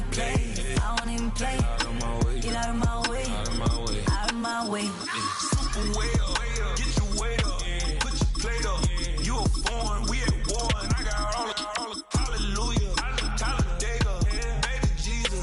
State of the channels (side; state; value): both; identical; correlation 1.00